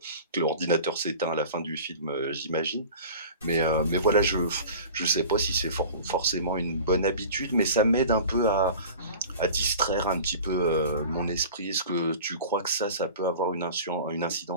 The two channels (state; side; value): inverted; both; correlation -0.39